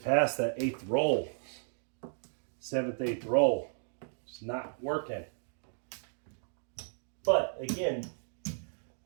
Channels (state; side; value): silent; left; digital silence